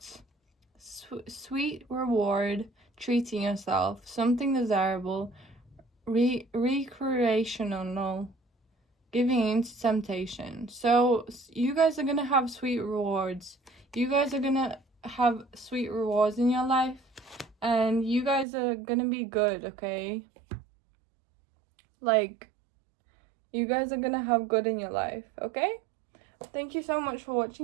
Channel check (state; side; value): drops out; left; at 18.4 s